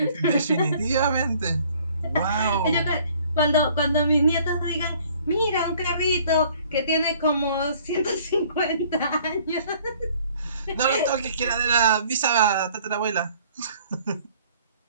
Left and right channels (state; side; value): inverted; both; correlation -0.57